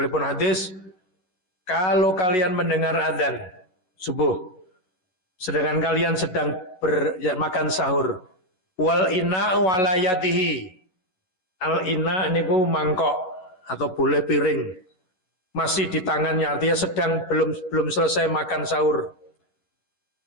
hadis, kalau kalian mendengar adzan subuh, sedangkan kalian sedang makan sahur, wal ina walayatihi, al ina niku mangkok atau boleh piring, masih di tangannya, artinya sedang belum selesai makan sahur.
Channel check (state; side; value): late; right; 11 ms